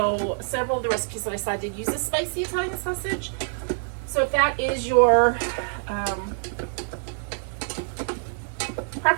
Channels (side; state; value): left; silent; digital silence